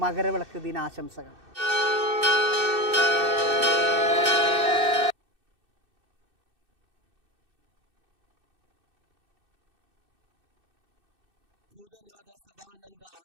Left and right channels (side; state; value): left; late; 2.6 ms